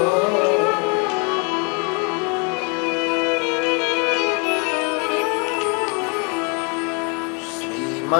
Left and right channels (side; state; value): right; quieter; 34.4 dB